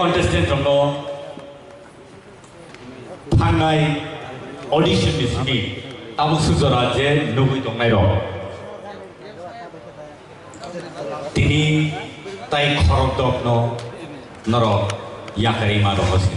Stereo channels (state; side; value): identical; both; correlation 1.00